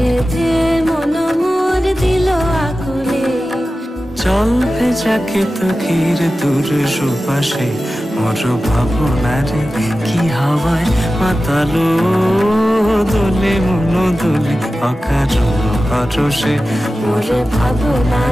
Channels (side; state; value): both; normal; correlation 0.94